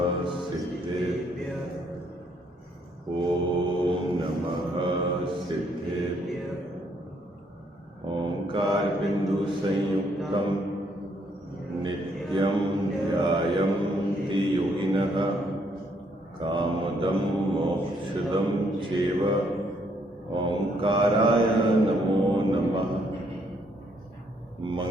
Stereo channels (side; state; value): both; normal; correlation 0.70